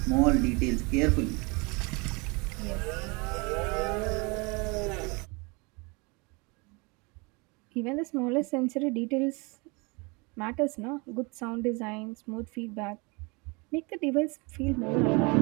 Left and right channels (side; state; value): left; quieter; 28.8 dB